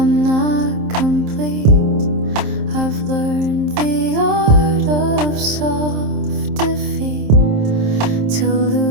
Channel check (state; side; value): late; left; 27 ms